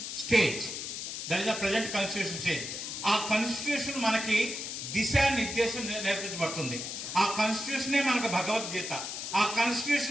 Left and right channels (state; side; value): noise; left; hiss, 6 dB below the sound